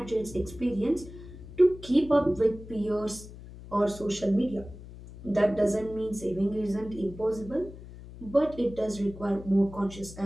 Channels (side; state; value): left; noise; hum, 15 dB below the sound